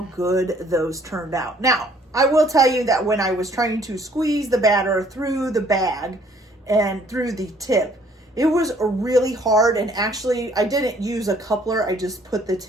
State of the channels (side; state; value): both; normal; correlation 0.61